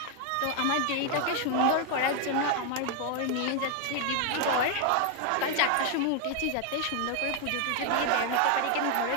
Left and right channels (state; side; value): different; both; correlation 0.01